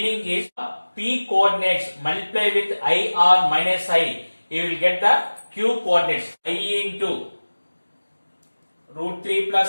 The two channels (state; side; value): inverted; both; correlation -1.00